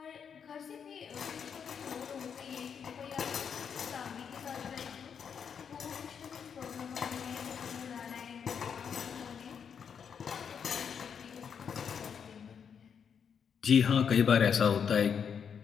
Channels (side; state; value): right; quieter; 7.2 dB